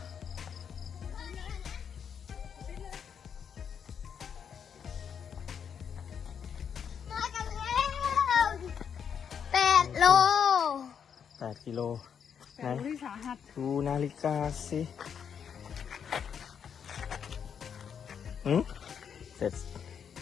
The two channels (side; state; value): right; quieter; 7.5 dB